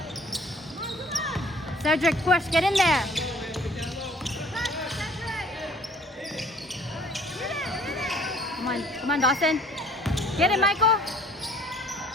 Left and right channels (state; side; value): normal; both; correlation 0.55